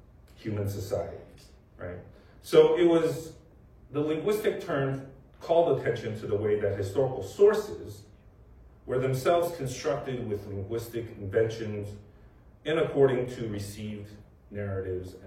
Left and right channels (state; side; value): identical; both; correlation 1.00